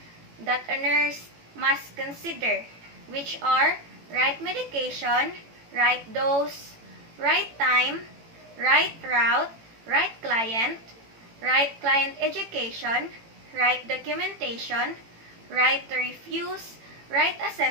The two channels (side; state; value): left; late; 18 ms